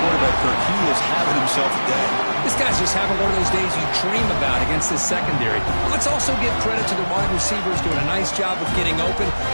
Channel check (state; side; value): inverted; both; correlation -1.00